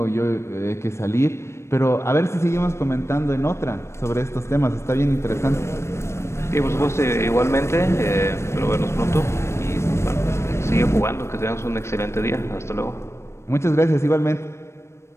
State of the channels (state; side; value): late; right; 0.13 ms